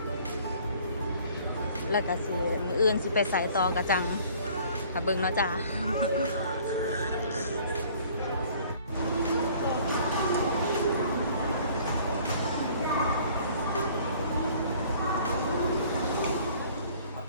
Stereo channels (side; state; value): both; inverted; correlation -0.54